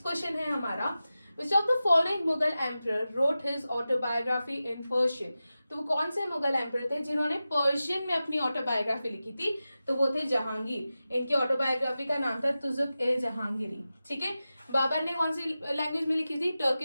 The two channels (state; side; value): inverted; both; correlation -0.94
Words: question है हमारा, which of the following Mughal emperor wrote his autobiography in Persian. तो वो कौन से मुगल एम्परर थे जिन्होंने पर्शियन में अपनी ऑटोबायोग्राफी लिखी थी? तो वो थे जहांगीर। इनकी ऑटोबायोग्राफी का नाम था तुजुक ए जहांगीरी। ठीक है, बाबर ने कौन सी लैंग्वेज में लिखी थी?